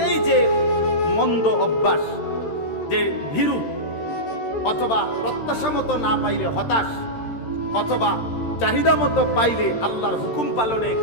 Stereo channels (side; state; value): right; late; 13 ms